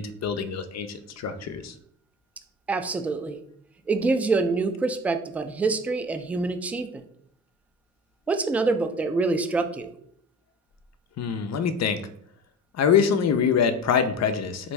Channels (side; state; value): both; normal; correlation 0.36